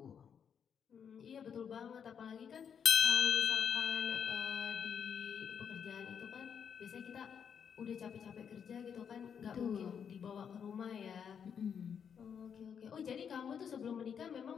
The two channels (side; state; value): right; quieter; 7.5 dB